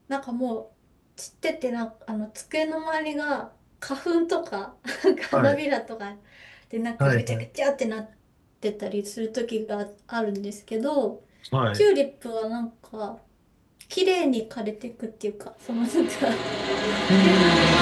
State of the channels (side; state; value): both; identical; correlation 1.00